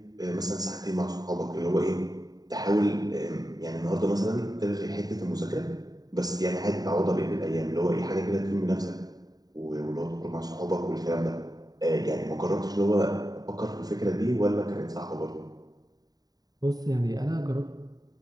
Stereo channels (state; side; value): late; left; 0.18 ms